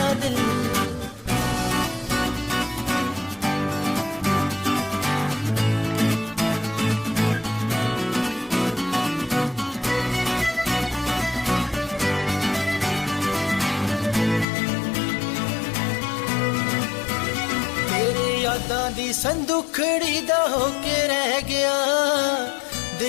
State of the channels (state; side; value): drops out; right; at 14.5 s